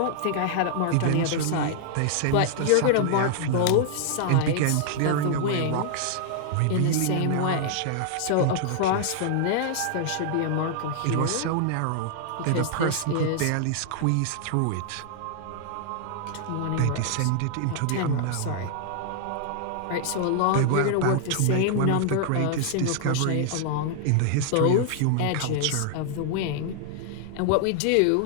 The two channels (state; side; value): different; both; correlation 0.00